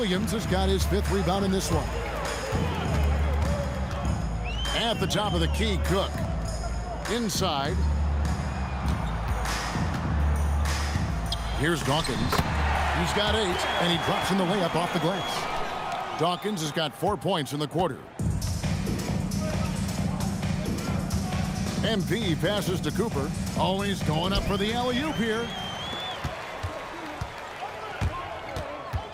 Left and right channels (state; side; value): identical; both; correlation 1.00